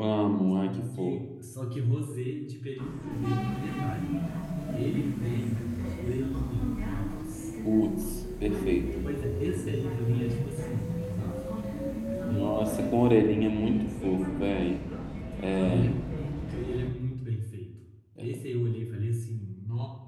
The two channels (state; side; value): identical; both; correlation 1.00